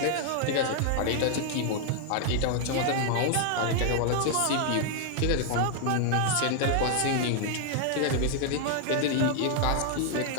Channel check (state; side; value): different; both; correlation 0.00